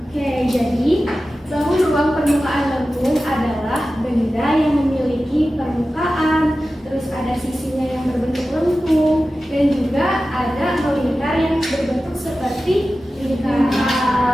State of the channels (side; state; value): both; normal; correlation 0.94